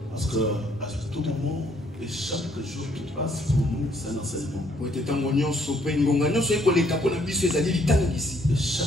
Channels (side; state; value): both; normal; correlation 0.67